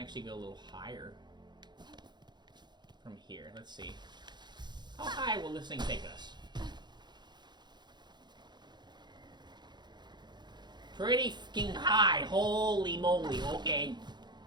go a little higher from here. Let's see. How high will this thing take us? Pretty fucking high. Holy moly. Okay.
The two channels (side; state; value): left; late; 0.21 ms